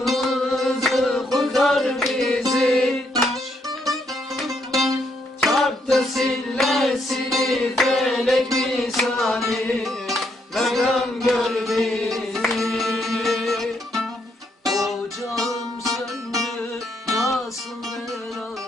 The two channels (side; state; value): both; normal; correlation 0.75